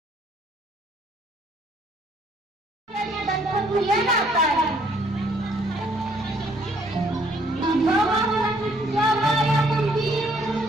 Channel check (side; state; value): both; normal; correlation 0.64